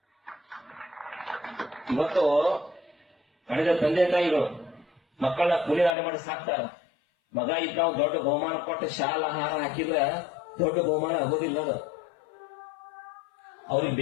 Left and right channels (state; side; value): drops out; right; at 6.0 s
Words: ಇವತ್ತು ಕಳೆದ ತಂದೆ ತಾಯಿಗಳು ಮಕ್ಕಳನ್ನ ಕೂಲಿನಾಡೆ ಮಾಡಿ ಸಾಕ್ತಾರ. ಮಗ ಇದ್ದ ನಾವು ದೊಡ್ಡ ಬಹುಮಾನ ಕೊಟ್ಟು ಶಾಲಾ ಆಹಾರ ಹಾಕಿದ್ರೆ ದೊಡ್ಡ ಬಹುಮಾನ ಆಗೋದಿಲ್ಲ. ಅದು ಅವ್ರಿಗೆ